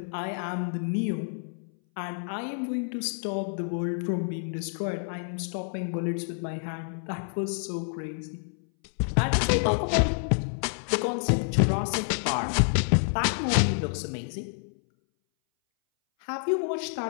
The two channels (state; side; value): silent; right; 59 dB below the other